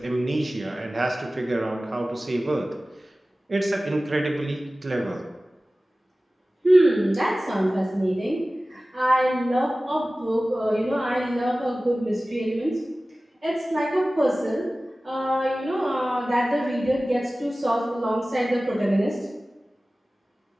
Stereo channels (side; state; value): both; normal; correlation 0.97